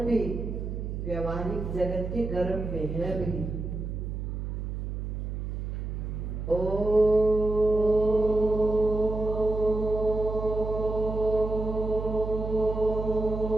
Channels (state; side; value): noise; right; hum, 5 dB below the sound